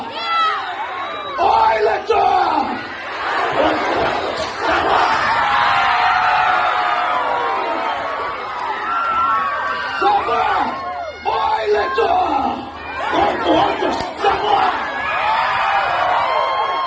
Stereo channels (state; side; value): identical; both; correlation 1.00